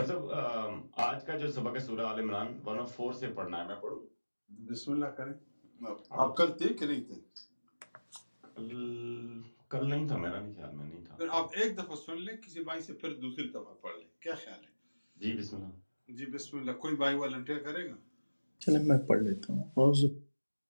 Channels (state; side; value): inverted; both; correlation -1.00